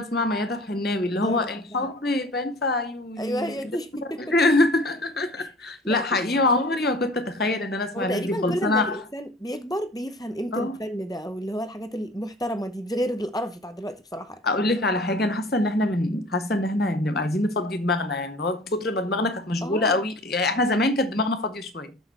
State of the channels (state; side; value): normal; both; correlation 0.45